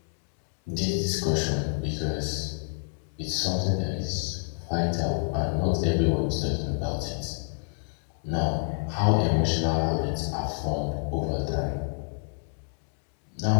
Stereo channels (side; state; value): right; silent; 59 dB below the other